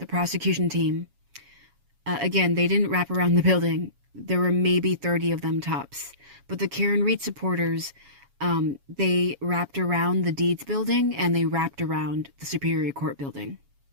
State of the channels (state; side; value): late; left; 7.2 ms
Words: prosecution team, again, they didn't wrap around the building. There were maybe 30 of them tops. But the Karen Read supporters, they wrapped around the Deeds building and they wrapped around the Superior Court building.